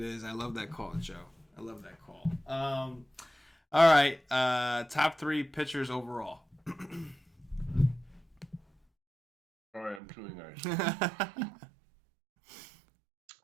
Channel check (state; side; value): drops out; left; at 10.0 s